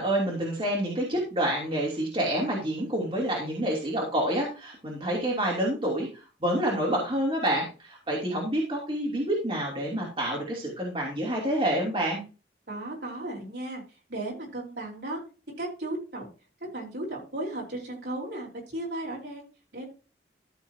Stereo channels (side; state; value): both; normal; correlation 0.34